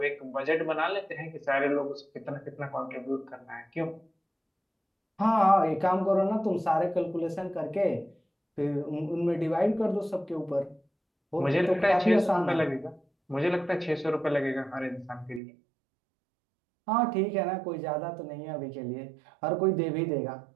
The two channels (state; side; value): drops out; left; at 15.4 s